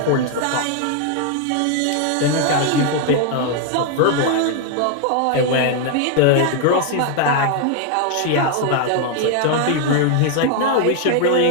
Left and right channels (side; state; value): both; different; correlation 0.00